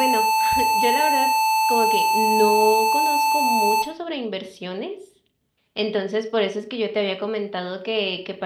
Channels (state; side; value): identical; both; correlation 1.00